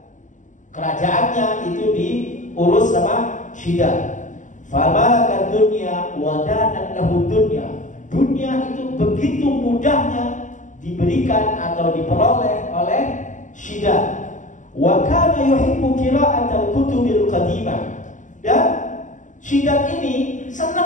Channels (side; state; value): right; late; 0.37 ms